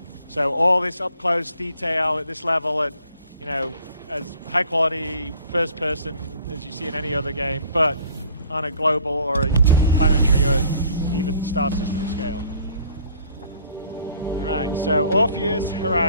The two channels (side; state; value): both; inverted; correlation -0.55